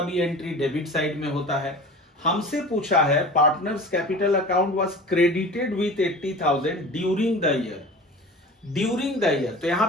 भी एंट्री डेबिट साइड में होता है। हमसे पूछा है partners capital account was credited with 80,000 during the year. During the year, तो यहाँ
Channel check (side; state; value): both; normal; correlation 0.38